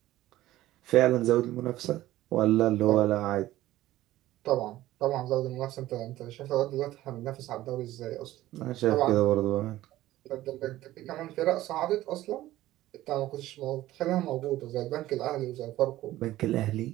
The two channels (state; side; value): quieter; left; 15.4 dB